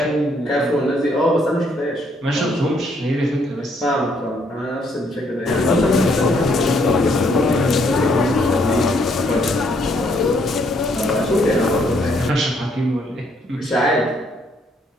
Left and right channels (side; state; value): both; normal; correlation 0.69